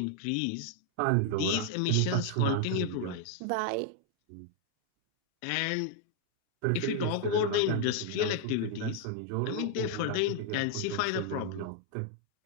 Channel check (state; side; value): different; both; correlation 0.00